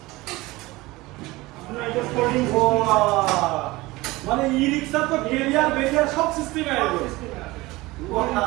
আপনার এটা ফোল্ডিং মানে ই রিক্সা তো বেরিয়ার সব সিস্টেম আছে।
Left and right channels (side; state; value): left; quieter; 20.5 dB